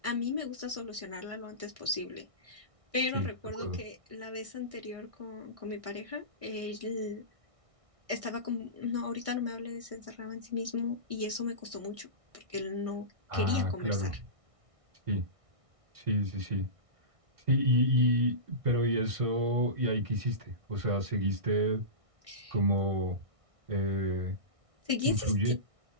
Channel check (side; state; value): left; late; 1.6 ms